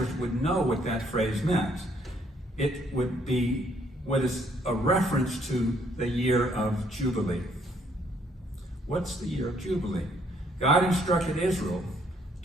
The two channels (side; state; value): both; normal; correlation 0.66